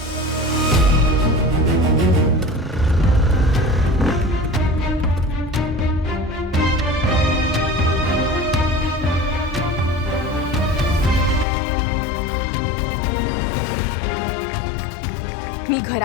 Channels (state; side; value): drops out; right; at 11.5 s